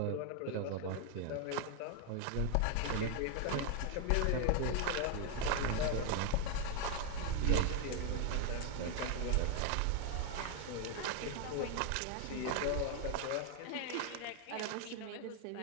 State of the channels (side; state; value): both; different; correlation 0.01